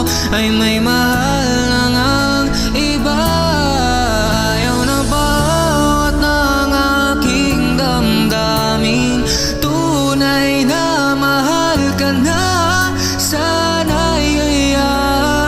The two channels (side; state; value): both; identical; correlation 1.00